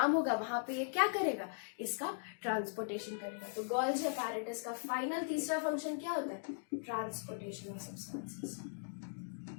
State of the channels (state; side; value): silent; right; digital silence